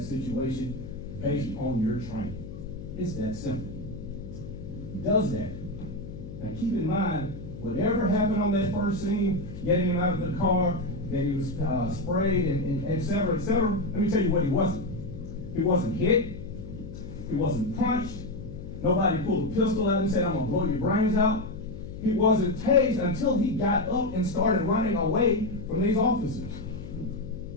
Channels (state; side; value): noise; left; hum, 11 dB below the sound